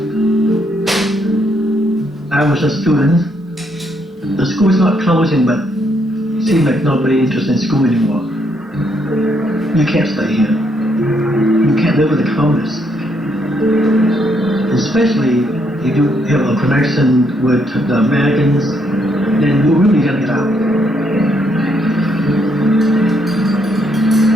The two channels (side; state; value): both; normal; correlation 0.74